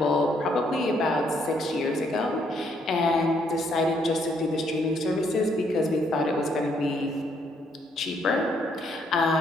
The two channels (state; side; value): normal; both; correlation 0.71